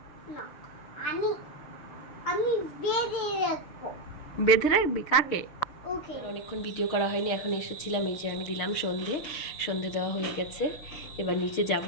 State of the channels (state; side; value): late; right; 6.6 ms